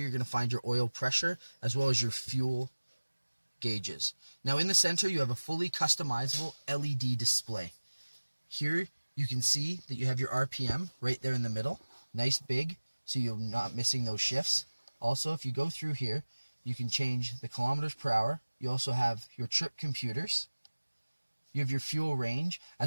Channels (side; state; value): both; inverted; correlation -1.00